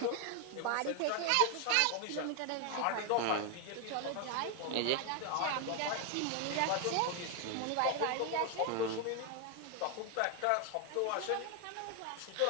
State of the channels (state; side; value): different; both; correlation 0.01